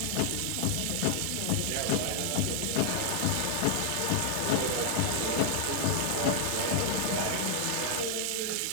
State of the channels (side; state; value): both; different; correlation 0.00